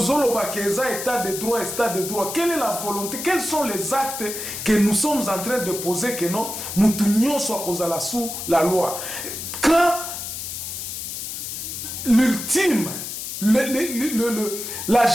Bakeza, état de droit, état de droit. Quelle est la volonté? Quels sont les actes que nous sommes en train de poser que non, nous tunions soit cause sous la loi? Quand l'ultime,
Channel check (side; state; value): left; noise; hiss, 6 dB below the sound